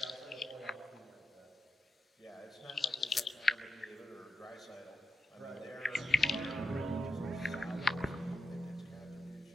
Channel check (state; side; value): normal; both; correlation 0.86